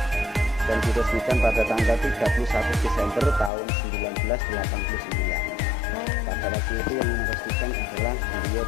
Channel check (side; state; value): right; drops out; at 3.5 s